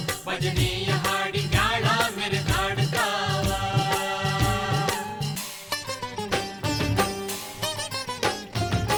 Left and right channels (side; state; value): both; identical; correlation 1.00